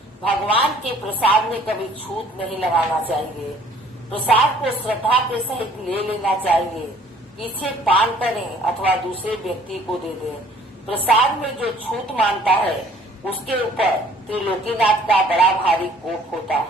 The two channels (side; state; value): both; normal; correlation 0.56